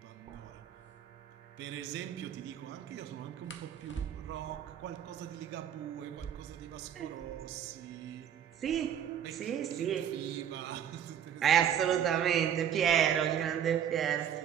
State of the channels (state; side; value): quieter; left; 9.3 dB